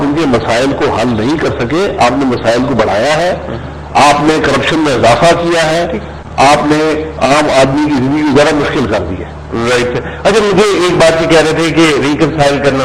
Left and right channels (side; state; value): both; identical; correlation 1.00